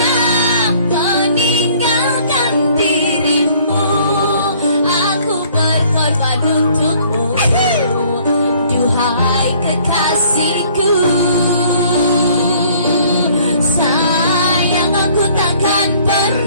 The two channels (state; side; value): inverted; both; correlation -0.58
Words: meninggalkan dirimu. Aku berkorban untukmu, duhai kekasihku. Sayang aku takkan